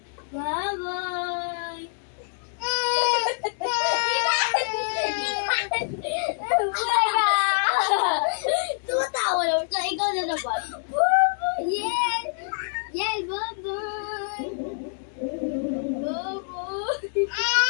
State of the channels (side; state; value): right; silent; digital silence